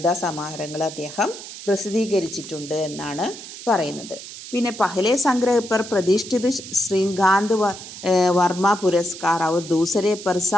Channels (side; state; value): right; noise; hiss, 13 dB below the sound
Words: സമാഹാരങ്ങൾ അദ്ദേഹം പ്രസിദ്ധീകരിച്ചിട്ടുണ്ട് എന്നാണ് പറയുന്നത്. പിന്നെ पहले संग्रह पर प्रतिष्ठित श्रीकांत वर्मा पुरस्कार और दूसरे पर